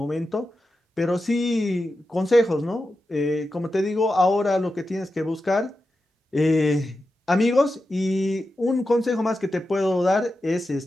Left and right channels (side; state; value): both; normal; correlation 0.90